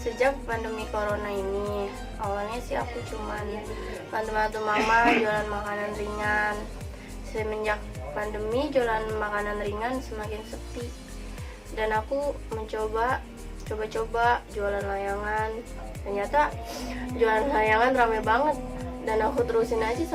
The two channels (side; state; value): both; identical; correlation 1.00